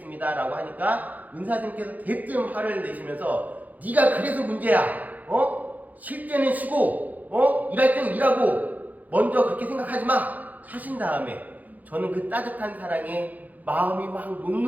라고 하니까 은사스님께서 대뜸 화를 내시면서 네가 그래서 문제야, 쉴 때는 쉬고 일할 때는 일하고 먼저 그렇게 생각하지 마 하신 다음에 저는 그 따뜻한 사랑에 마음이 막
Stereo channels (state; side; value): late; left; 0.080 ms